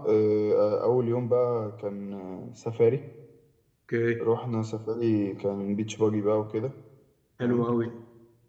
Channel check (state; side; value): identical; both; correlation 1.00